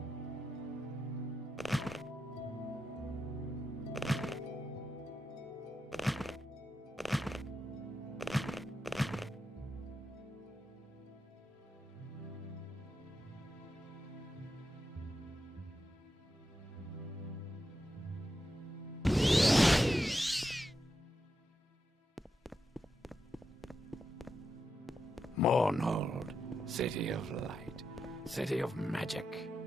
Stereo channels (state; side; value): normal; both; correlation 0.86